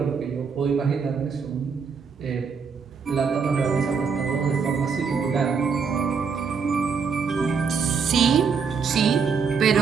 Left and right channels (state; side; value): quieter; left; 5.8 dB